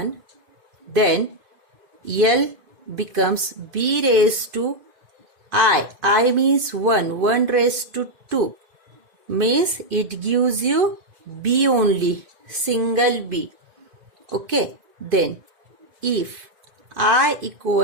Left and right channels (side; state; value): left; late; 2.5 ms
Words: then L becomes b raised to I means 1 raised to 2, means it gives you b only, single b. Okay, then if I